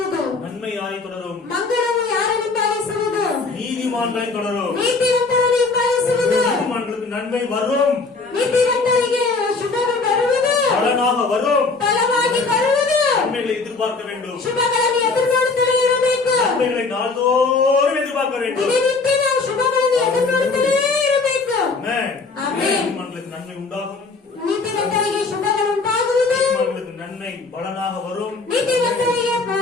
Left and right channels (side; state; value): right; quieter; 4.0 dB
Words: நன்மை யாரை தொடரும்? ಮಂಗಳವು ಯಾರನ್ನು ಉಂಟಾಗಿಸುವುದು? நீதிமான்களை தொடரும். ನೀತಿವಂತರನ್ನು ಉಂಟಾಗಿಸುವುದು. நீதிமான்களுக்கு நன்மை வரும், ನೀತಿವಂತರಿಗೆ ಶುಭವು ಬರುವುದು. பலனாக வரும். ಫಲವಾಗಿ ಬರುವುದು. நன்மைகளை எதிர்பார்க்க வேண்டும். ಶುಭಗಳನ್ನು ಎದುರು ನೋಡುತ್ತಲೇ ಇರಬೇಕು. நன்மைகளை நாள்தோறும் எதிர்பார்க்க வேண்டும். ದಿನನಿತ್ಯ ನಾವು ಶುಭಗಳನ್ನು ಎದುರು ನೋಡುತ್ತಲೇ ಇರಬೇಕು. ஆமென். ஆமென். நீதிமான்களுக்கு நன்மை உண்டாகும். ನೀತಿವಂತರಿಗೆ ಶುಭಗಳು ಉಂಟಾಗುವುದು. நீதிமான்களுக்கு நன்மை பலனாக வரும். ನೀತಿವಂತರಿಗೆ